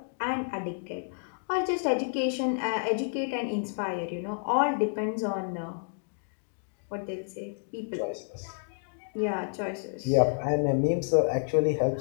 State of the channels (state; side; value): silent; right; digital silence